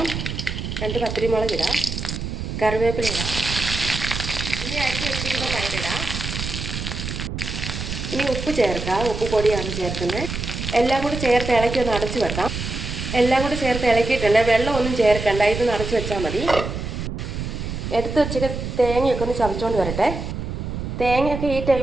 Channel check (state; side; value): noise; right; rumble, 5 dB below the sound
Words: 2 പച്ചമുളക് ഇടാം. കറിവേപ്പില ഇടാം. ഇനി അരിഞ്ഞ് വെച്ചിരിക്കുന്ന പയറിടാം. ഇനി ഉപ്പ് ചേർക്കാം. ഉപ്പ് പൊടിയാണ് ചേർക്കുന്നത്. എല്ലാം കൂടി ചേർത്ത് ഇളക്കി ഒന്ന് അടച്ചു വെക്കാം. എല്ലാം കൂടി ചേർത്ത് ഇളക്കിയിട്ടുണ്ട്. വെള്ളമൊന്നും ചേർക്കണ്ട. ഇത് അടച്ചു വെച്ചാൽ മതി. എടുത്ത് വെച്ചിട്ട് തേങ്ങയൊക്കെ ഒന്ന് ചതച്ചുകൊണ്ട് വരട്ടെ. തേങ്ങയൊക്കെ ഈ